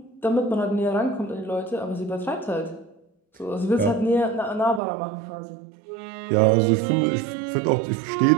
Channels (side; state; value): left; drops out; at 4.8 s